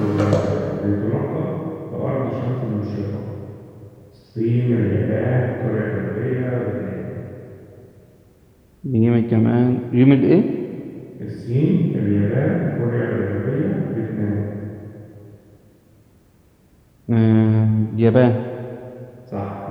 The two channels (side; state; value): both; identical; correlation 1.00